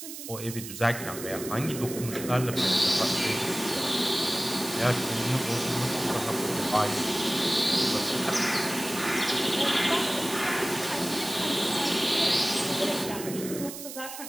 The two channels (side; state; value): right; noise; hiss, 10 dB below the sound